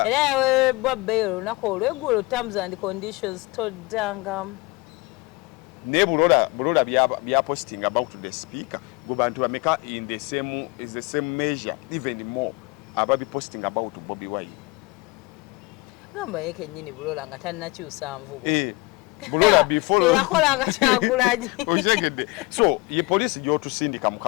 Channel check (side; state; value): right; quieter; 24.3 dB